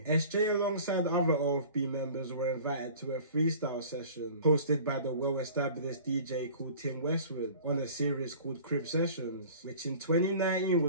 SJ alongside other OFB members were invited to a freestyle session hosted by the well-established DJ called Tim Westwood on a series called Crib Sessions, which in 2019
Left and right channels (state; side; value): inverted; both; correlation -0.45